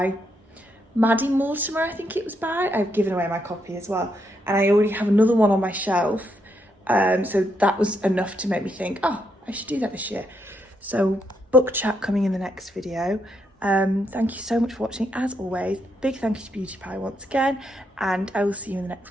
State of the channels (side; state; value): both; normal; correlation 0.78